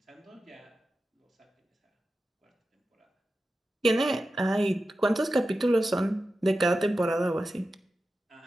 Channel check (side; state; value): both; normal; correlation 0.92